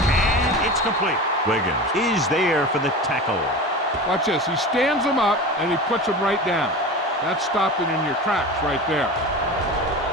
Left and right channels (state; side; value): normal; both; correlation 0.31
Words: it's complete. Wiggins is there for the tackle. Watch this. He stands him up, and he puts him right down. That's stopping in your tracks right there.